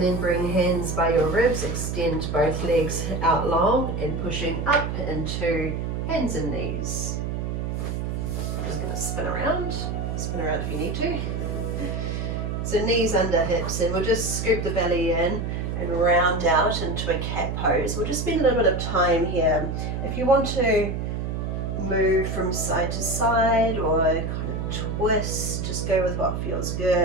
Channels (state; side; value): noise; right; hum, 3 dB below the sound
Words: then bring hands by your ribs, extend both legs out long and pushing up into hands and knees. I'm just going to spin around if you need to. So knees under hips, and we'll just scoop the belly in and round out into a cat pose. We'll just spend a little bit of time here. If you want to move from side to side or kind of twist, just go with what feels